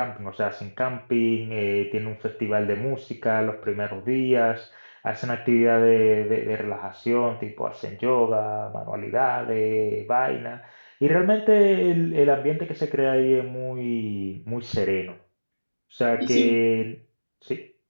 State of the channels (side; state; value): both; inverted; correlation -1.00